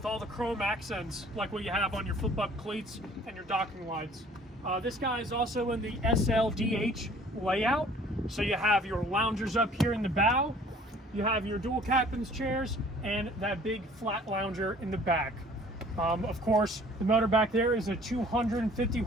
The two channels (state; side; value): normal; both; correlation 0.53